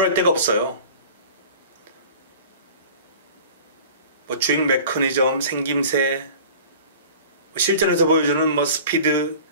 데가 없어요. 뭐 주행 메커니즘, 생김새, 실전에서 보여주는 뭐 스피드,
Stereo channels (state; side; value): inverted; both; correlation -0.42